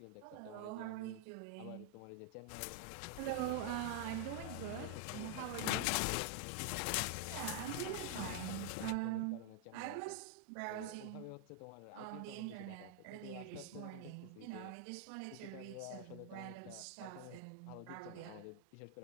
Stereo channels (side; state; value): both; different; correlation 0.00